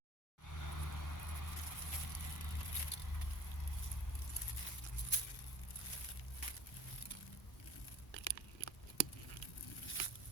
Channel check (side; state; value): both; normal; correlation 0.43